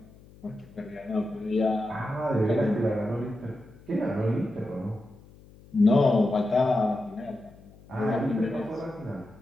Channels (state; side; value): noise; left; hum, 23 dB below the sound